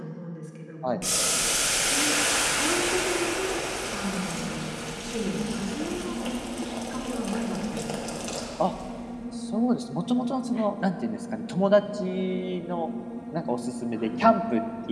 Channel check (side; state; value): both; identical; correlation 1.00